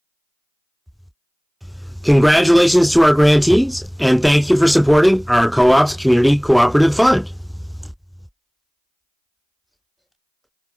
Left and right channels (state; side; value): identical; both; correlation 1.00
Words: Congratulations to our grantees, and thank you for supporting our co-op's Community Cooperative Fund.